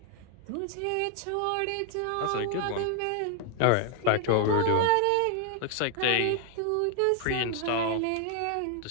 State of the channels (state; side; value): different; both; correlation 0.00